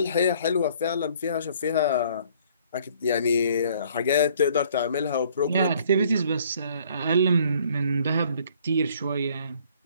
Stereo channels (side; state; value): both; inverted; correlation -0.59